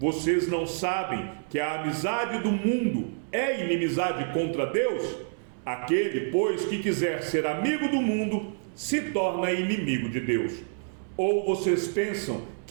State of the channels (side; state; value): left; silent; 59 dB below the other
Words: não sabem que a amizade do mundo é inimizade contra Deus? Aquele, pois, que quiser ser amigo do mundo, se torna inimigo de Deus. Ou vocês pensam